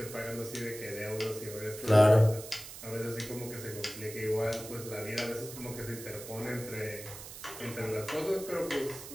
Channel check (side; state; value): right; noise; hiss, 12 dB below the sound